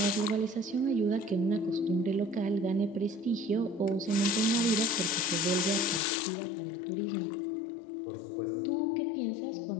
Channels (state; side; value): drops out; right; at 6.0 s